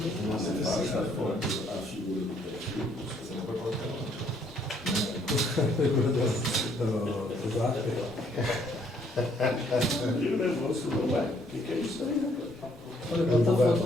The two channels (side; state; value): both; normal; correlation 0.66